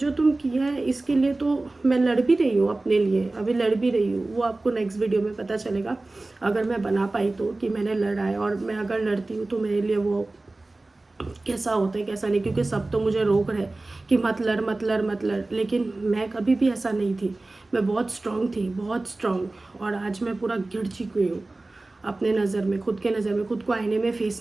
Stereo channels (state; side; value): quieter; left; 3.0 dB